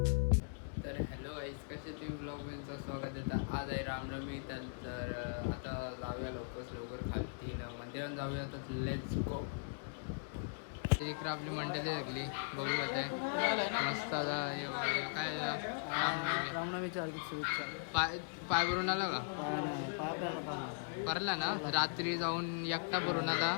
तर हॅलो गाईज, कसे तुम्ही ब्लॉगमध्ये स्वागत आहे. आज आहे रामनवमी. तर आता जाऊया लवकर खालती मंदिरात जाऊया. तर लेट्स गो. इकडे आपली मंडळी लागली बघू होते मस्त. आता काय रामनवमीच्या हार्दिक शुभेच्छा. पाय भरून आला का? परला ना रात्री जाऊन एकटा भरून आला.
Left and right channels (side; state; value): right; silent; digital silence